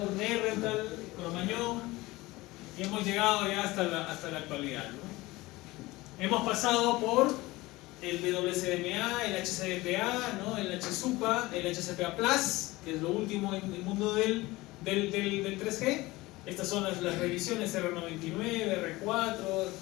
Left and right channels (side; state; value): right; quieter; 20.1 dB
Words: Nerental, Cromañón y hemos llegado ya hasta la actualidad, ¿no? Hemos pasado por el WCDMA, el HCDPA, ¿no? El HSUPA, el HCPA Plus, que es lo último en el mundo del 3G. Estas son las revisiones R99, R4,